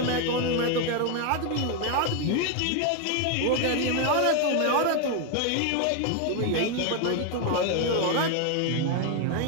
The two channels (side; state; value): both; different; correlation 0.01